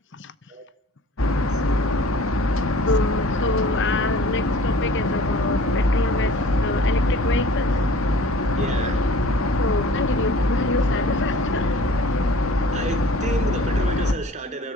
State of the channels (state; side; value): normal; both; correlation 0.48